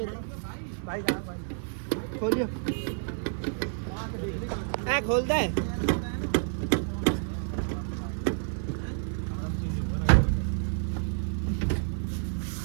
भाई खोलियो, खोल दे।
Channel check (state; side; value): silent; left; 58 dB below the other